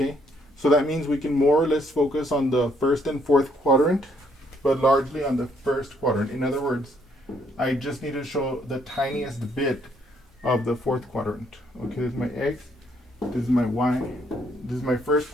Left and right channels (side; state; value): both; normal; correlation 0.69